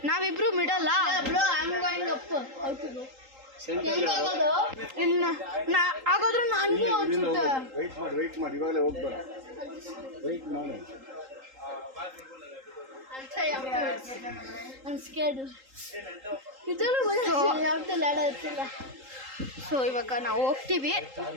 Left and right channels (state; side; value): late; left; 3.8 ms